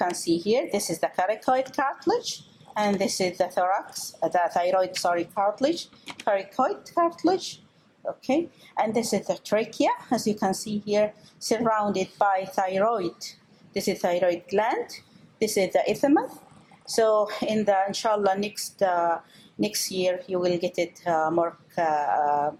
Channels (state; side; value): identical; both; correlation 1.00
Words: see here, this is the coracoid cartilage, and this is the thyroid cartilage, coracoid cartilage, okay? And this is the trachea, as you can see here, surrounded by thyroid. This is thyroid gland, this is the isthmus. So in the, inshallah, next year, you will get it more